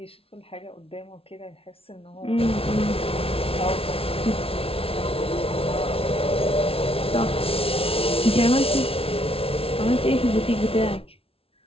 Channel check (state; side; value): late; right; 0.27 ms